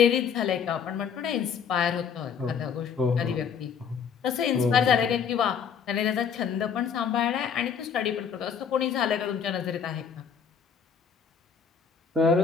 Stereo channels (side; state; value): right; quieter; 6.9 dB